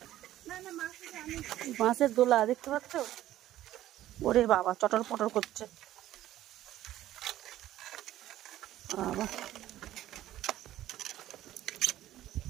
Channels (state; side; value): quieter; left; 13.7 dB